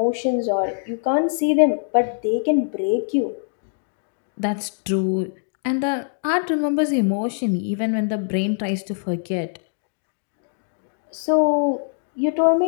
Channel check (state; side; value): silent; right; digital silence